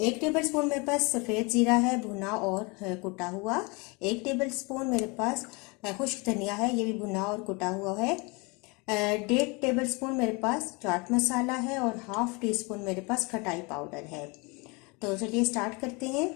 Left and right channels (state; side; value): quieter; right; 28.5 dB